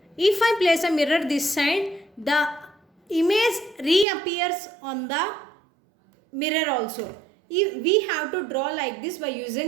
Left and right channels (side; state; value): left; drops out; at 4.0 s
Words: if I place a mirror this side, the image reappears on the mirror also. We have to draw like this by